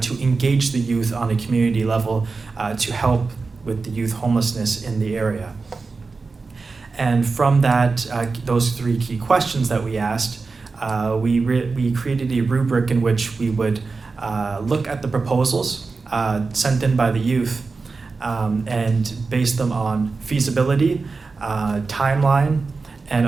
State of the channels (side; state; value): left; quieter; 4.2 dB